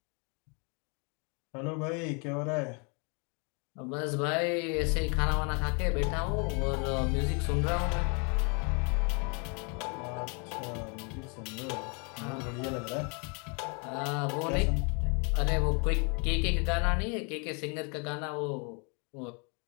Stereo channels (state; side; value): quieter; right; 34.9 dB